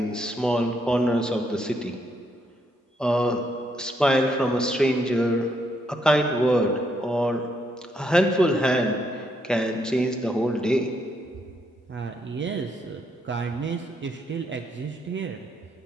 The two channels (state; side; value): normal; both; correlation 0.75